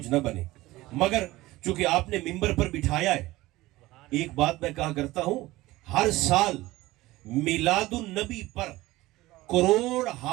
نہ بنے، مگر چونکہ آپ نے ممبر پر بٹھایا ہے، ایک بات میں کہا کرتا ہوں، ہر سال میلاد النبی پر کروڑ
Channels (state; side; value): quieter; left; 18.4 dB